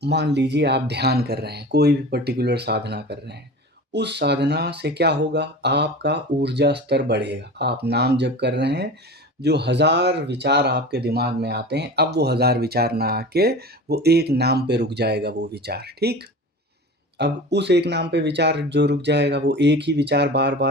मान लीजिए आप ध्यान कर रहे हैं, कोई भी पर्टिकुलर साधना कर रहे हैं। उस साधना से क्या होगा? आपका ऊर्जा स्तर बढ़ेगा। आप नाम जप कर रहे हैं, जो 1000 विचार आपके दिमाग में आते हैं, अब वो 1000 विचार ना आके वो एक नाम पे रुक जाएगा वो विचार, ठीक? अब उस एक नाम पे विचार जो रुक जाएगा, वो एक ही विचार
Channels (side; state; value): both; normal; correlation 0.34